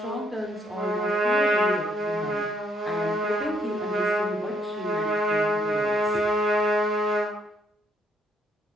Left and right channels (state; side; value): normal; both; correlation 0.71